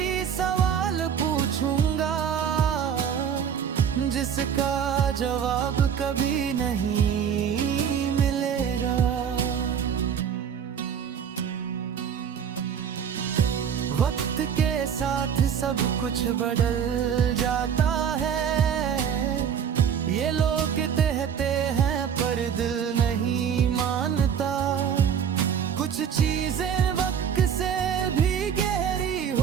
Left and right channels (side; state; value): left; quieter; 8.0 dB